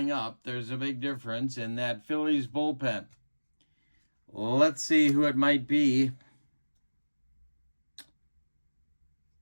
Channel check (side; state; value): both; inverted; correlation -1.00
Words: up. There's a big difference in that Phillies bullpen. Let's see who it might be.